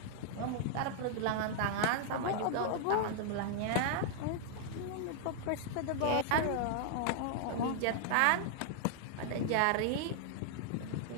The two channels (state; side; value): different; both; correlation -0.01